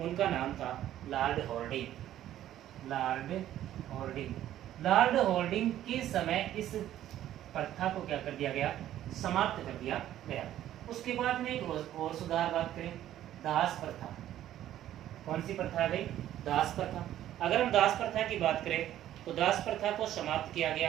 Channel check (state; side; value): quieter; left; 12.4 dB